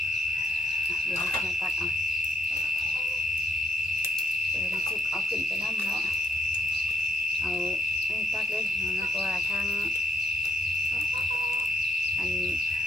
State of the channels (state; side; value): normal; both; correlation 0.74